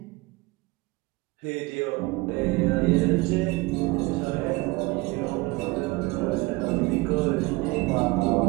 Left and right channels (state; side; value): quieter; left; 23.2 dB